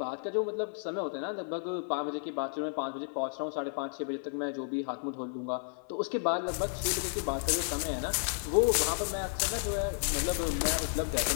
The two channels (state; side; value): silent; right; 55 dB below the other